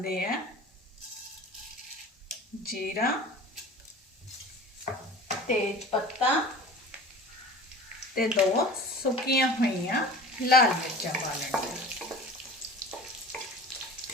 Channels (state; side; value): normal; both; correlation 0.39